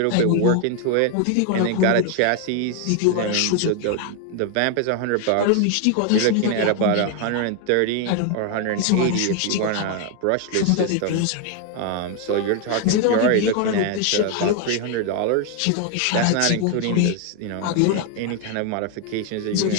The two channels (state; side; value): different; both; correlation 0.01